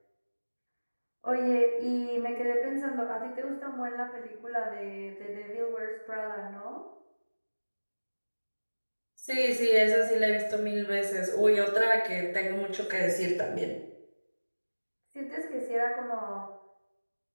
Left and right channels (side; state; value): both; inverted; correlation -1.00